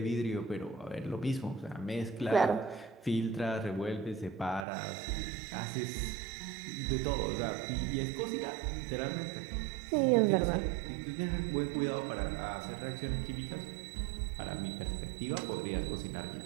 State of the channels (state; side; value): drops out; left; at 4.7 s